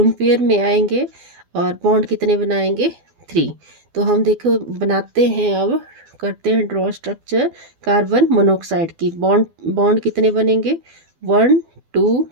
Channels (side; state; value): left; late; 12 ms